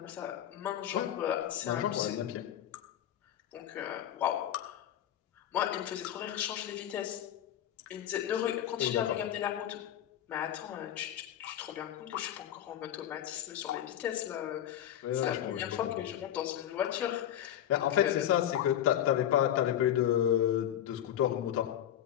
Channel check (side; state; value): right; quieter; 11.1 dB